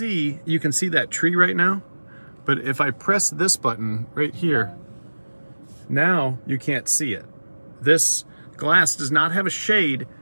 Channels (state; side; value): inverted; both; correlation -1.00